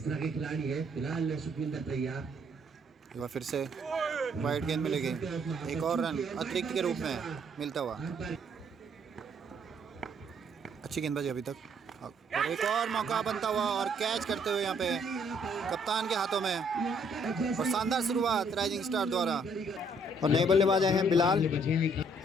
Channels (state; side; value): normal; both; correlation 0.66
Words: तरह के खिलाड़ी है फिलहाल सुखविंदर तैयार। एक बार फिर से वाइड गेंद मिलेगी, एक और रन अतिरिक्त के रूप में मिलता हुआ। अच्छी गेंदबाजी अभी तक, और एक और मौका बनता हुआ और कैच करते हुए यहाँ पे कप्तान के हाथों में, और शानदार शुरुआत राइजिंग स्टार द्वारा। और नए बल्लेबाज आए हैं बिलाल,